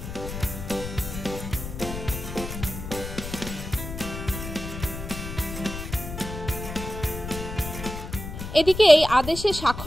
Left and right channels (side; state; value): left; noise; rumble, 8 dB below the sound